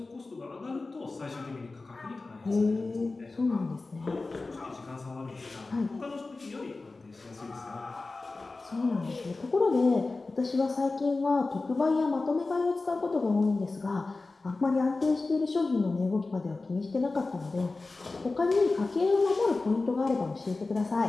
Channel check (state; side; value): quieter; right; 3.5 dB